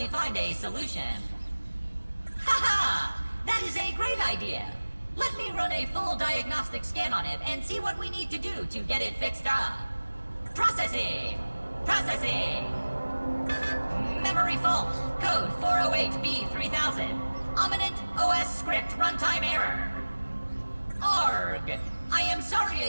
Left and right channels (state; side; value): inverted; both; correlation -1.00